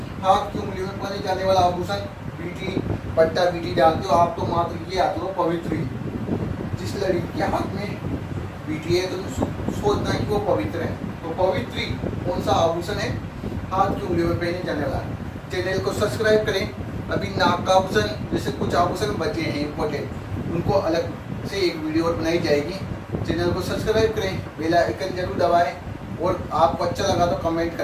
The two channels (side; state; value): both; identical; correlation 1.00